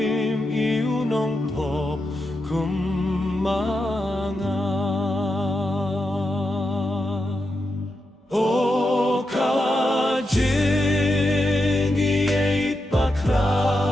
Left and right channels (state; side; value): normal; both; correlation 0.86